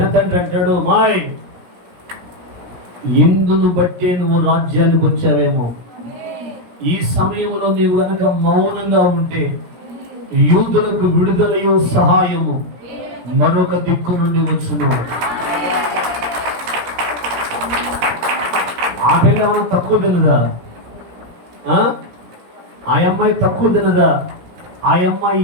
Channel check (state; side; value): late; left; 17 ms